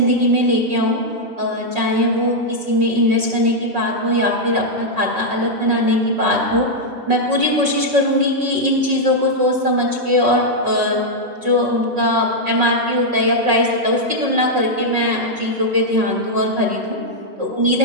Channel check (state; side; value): late; left; 5.4 ms